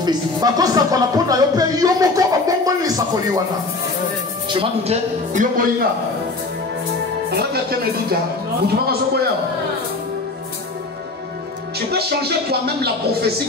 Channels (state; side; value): quieter; right; 3.4 dB